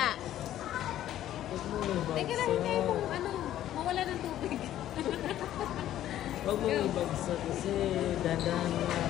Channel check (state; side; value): quieter; right; 12.5 dB